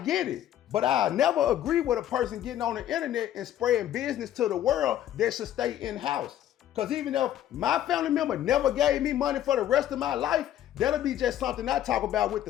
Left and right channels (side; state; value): right; quieter; 11.8 dB